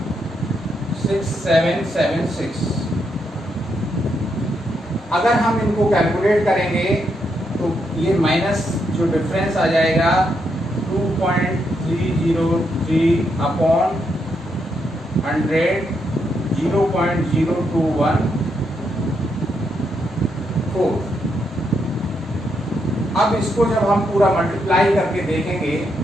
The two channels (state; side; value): normal; both; correlation 0.80